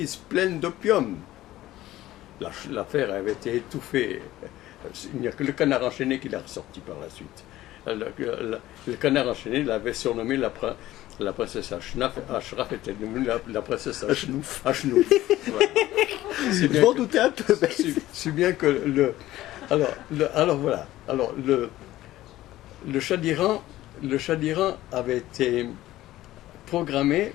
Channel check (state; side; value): quieter; right; 15.4 dB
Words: pleines d'opium. L'affaire avait été étouffée. Il n'y a que le Canard enchaîné qui l'a ressorti par la suite. le canard enchaîné l'avait surnommé la princesse Ashraf était devenue la princesse Ashnouf. Ouais. Je m'en doutais un peu. Si bien que alors voilà. Alors le Shah d'Iran avait été programmé